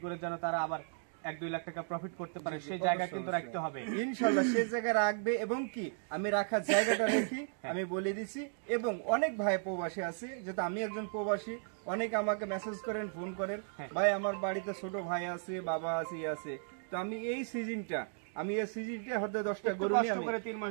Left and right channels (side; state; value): left; silent; digital silence